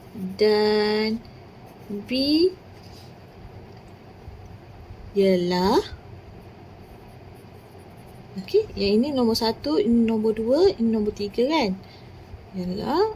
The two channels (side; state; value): both; identical; correlation 1.00